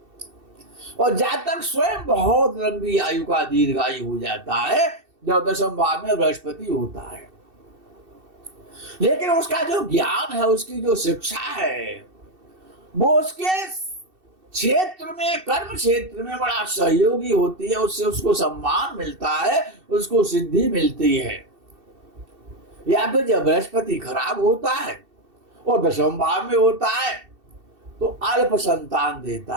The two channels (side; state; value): left; late; 2.7 ms